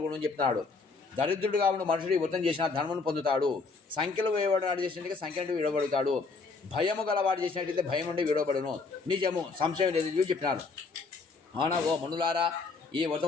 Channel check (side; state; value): right; quieter; 4.3 dB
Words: అని చెప్తున్నాడు. దరిద్రుడుగా ఉన్న మనుషుడు ఈ వ్రతం చేసిన ధర్మను పొందుతాడు. సంఖ్యలు వేయబడినాడు చేసినట్టుగా సంఖ్య నుండి విడవబడతాడు. భయము గలవాడు చేసినట్టయితే భయం నుండి విడవబడును. నిజము, సంశయం లేదు చెప్పినారు. అవునా ఓ మనులారా, ఈ